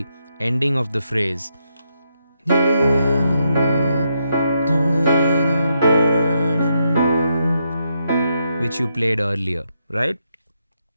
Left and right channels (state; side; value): inverted; both; correlation -0.80